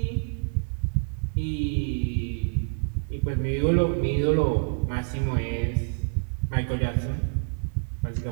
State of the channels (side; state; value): left; silent; digital silence